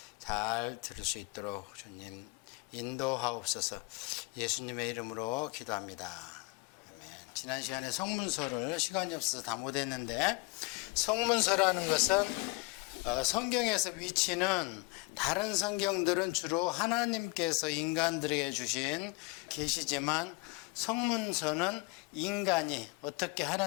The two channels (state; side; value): quieter; right; 26.5 dB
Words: 잘 들을 수 있도록 주님 인도하옵소서. 예수님의 이름으로 기도합니다. 지난 시간에 성문서를 시간이 없어서 다 못했는데, 성문서라는 것은 성경에서 위치는 다른 성경들은 주로 하나님께서 인간들에게 주신 계시지만 성문서는 인간이 어떻게